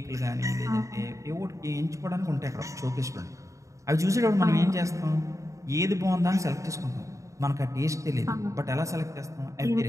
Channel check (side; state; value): left; late; 0.15 ms